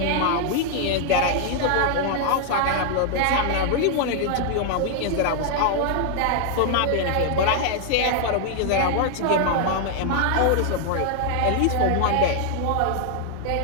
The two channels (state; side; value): different; both; correlation 0.00